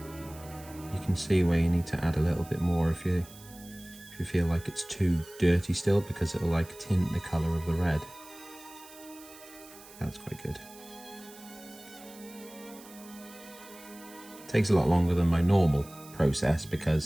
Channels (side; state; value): right; noise; hiss, 20 dB below the sound